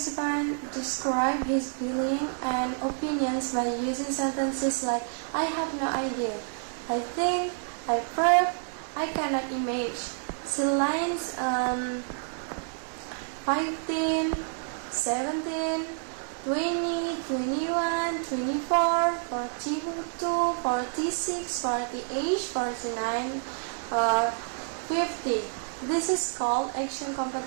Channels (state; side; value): silent; left; 59 dB below the other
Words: described his feelings and opinions by using sentences like, "I have no idea," "I think," "I prove," "I cannot imagine." See lines 15, 17, 20, 21, 24, 42, 46, 48, 49, or 50. This is called action